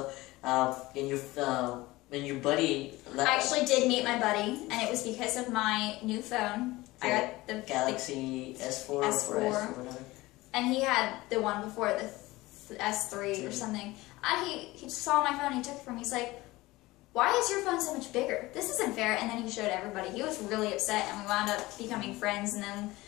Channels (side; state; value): right; quieter; 19.6 dB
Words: and your buddy. I actually did meet my buddy, and it was because of my new phone. I got the Galaxy S4 or whatever. And he had the one before, the S3 or something. And he saw my phone, he took it from me. He's like, why is your phone so much bigger? This isn't fair. And then he showed everybody. He was really upset, and we wound up becoming friends. And then